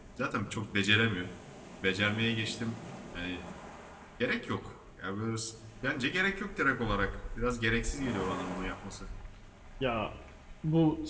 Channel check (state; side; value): identical; both; correlation 1.00